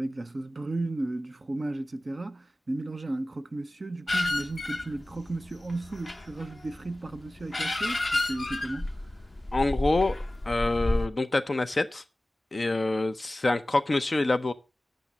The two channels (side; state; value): both; normal; correlation 0.97